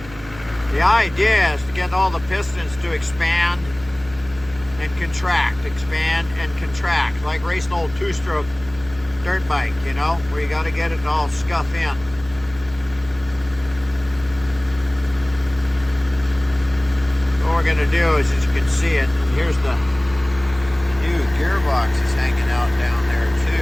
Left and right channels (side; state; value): right; noise; hum, 18 dB below the sound